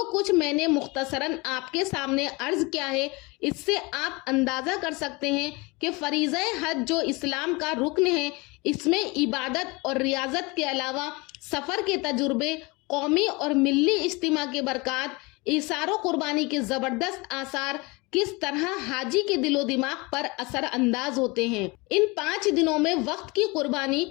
कुछ मैंने मुख्तसरन आपके सामने अर्ज किया है, इससे आप अंदाज़ा कर सकते हैं कि फरीज़ा हज जो इस्लाम का रुकन है, इसमें इबादत और रियाजत के अलावा सफ़र के तजुर्बे, कौमी और मिल्ली इज्तिमा के बरक़ात, इसारो कुर्बानी के ज़बरदस्त आसार किस तरह हाजी के दिलो दिमाग पर असर अंदाज होते हैं। इन 5 दिनों में वक्त की कुर्बानी,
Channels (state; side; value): quieter; right; 25.9 dB